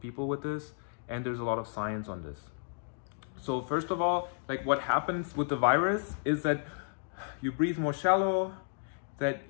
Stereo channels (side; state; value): right; silent; digital silence